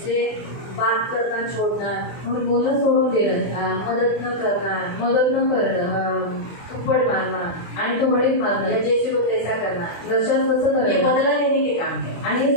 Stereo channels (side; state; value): right; late; 24 ms